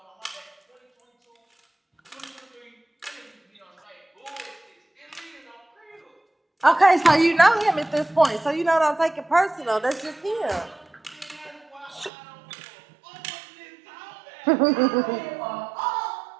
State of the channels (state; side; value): drops out; left; at 12.1 s